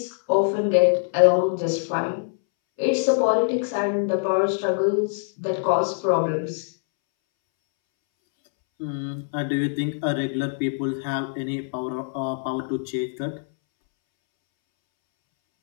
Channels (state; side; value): silent; right; 63 dB below the other